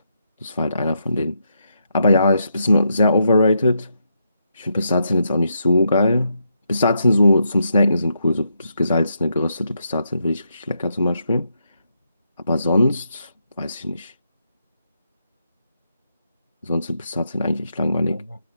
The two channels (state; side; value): inverted; both; correlation -0.80